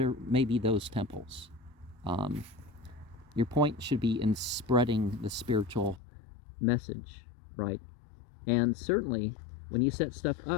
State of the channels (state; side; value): drops out; right; at 6.0 s